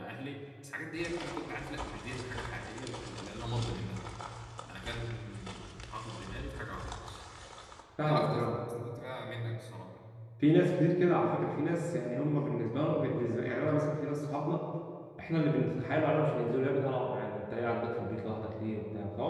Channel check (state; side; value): identical; both; correlation 1.00